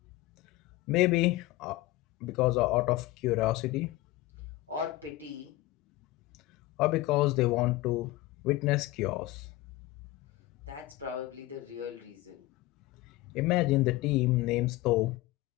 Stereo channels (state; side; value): quieter; right; 18.0 dB